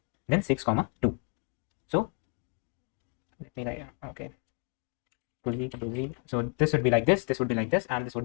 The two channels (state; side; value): quieter; right; 35.9 dB